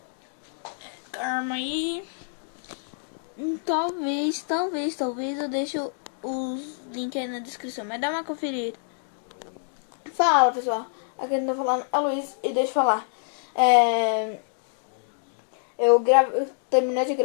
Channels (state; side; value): silent; right; digital silence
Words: Calma aí. Talvez eu deixe os links aí na descrição, mas dá uma conferida. Fala, pessoal. Aqui eu tô falando a Luiz e deixa eu falar. Eu terminei de